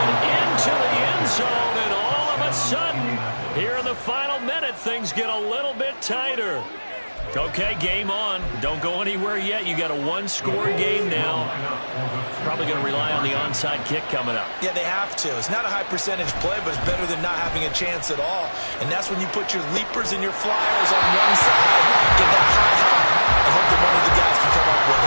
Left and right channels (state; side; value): inverted; both; correlation -1.00